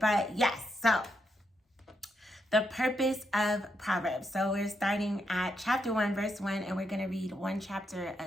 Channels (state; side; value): normal; both; correlation 0.81